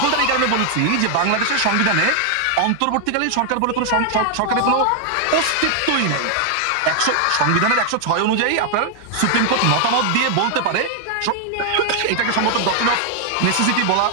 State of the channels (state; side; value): different; both; correlation 0.00